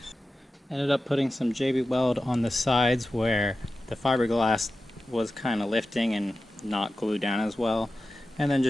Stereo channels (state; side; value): normal; both; correlation 0.93